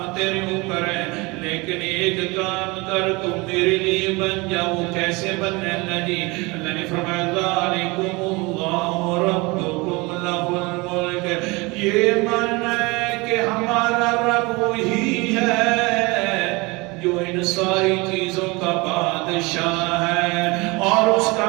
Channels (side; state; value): left; quieter; 25.1 dB